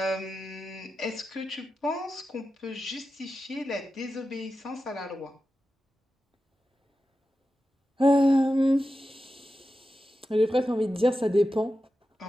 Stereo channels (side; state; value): both; normal; correlation 0.92